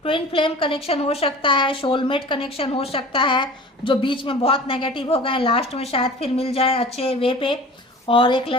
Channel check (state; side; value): normal; both; correlation 0.41